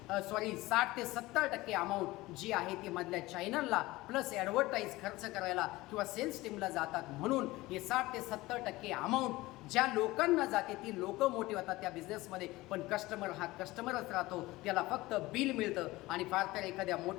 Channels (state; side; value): quieter; right; 19.4 dB